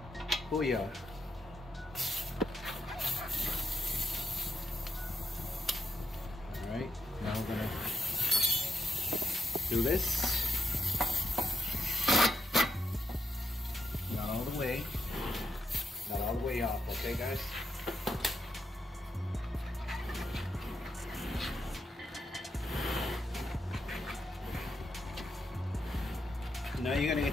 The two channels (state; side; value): normal; both; correlation 0.81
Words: Oh yeah. Alright, now we're gonna do this. way. Not all the way off, okay guys? Now you're gonna